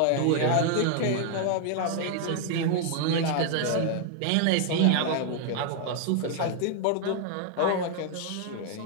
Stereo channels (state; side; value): different; both; correlation 0.00